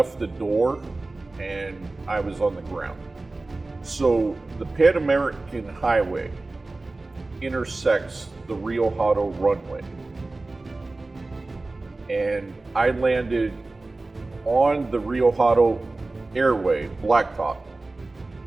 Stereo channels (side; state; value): left; quieter; 3.2 dB